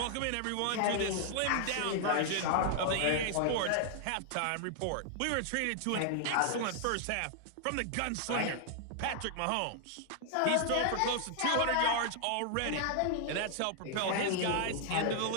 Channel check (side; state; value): both; different; correlation 0.00